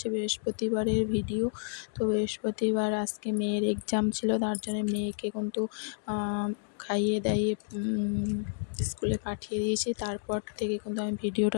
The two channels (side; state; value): right; silent; 58 dB below the other